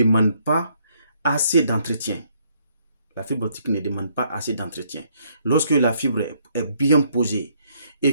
pas assez d'entretien. La fibre optique ne demande pas assez d'entretien. Lorsque la fibre est bien posée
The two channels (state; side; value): inverted; both; correlation -0.69